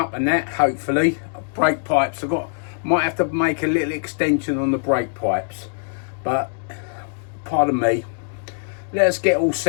and that, hopefully. Brake pipes, might have to make a little extension on the brake pipes, but pardon me, let's get all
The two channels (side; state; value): right; silent; digital silence